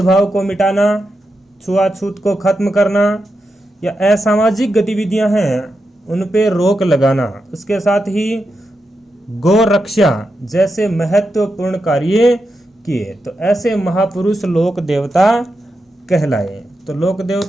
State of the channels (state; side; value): normal; both; correlation 0.87